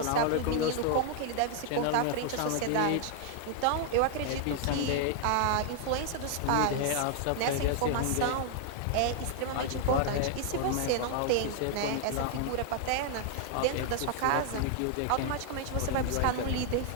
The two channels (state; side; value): different; both; correlation 0.00